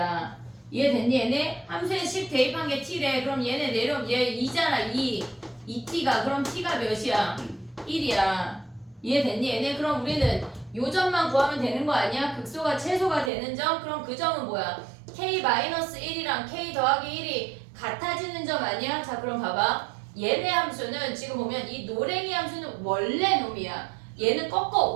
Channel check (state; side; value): drops out; left; at 13.3 s